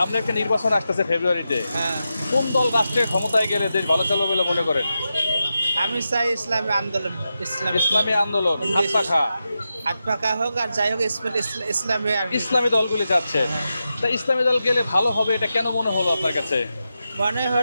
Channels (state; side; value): inverted; both; correlation -0.89